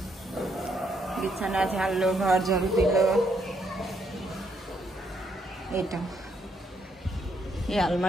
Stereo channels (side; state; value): both; normal; correlation 0.74